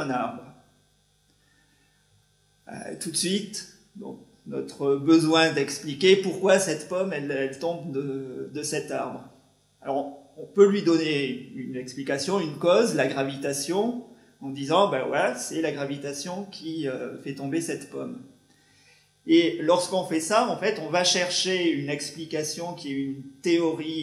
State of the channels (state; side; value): identical; both; correlation 1.00